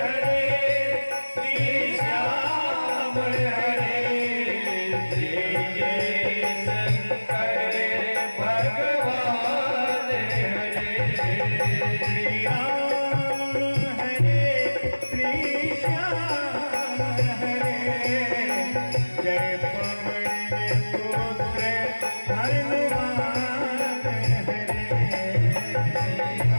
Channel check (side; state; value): both; inverted; correlation -1.00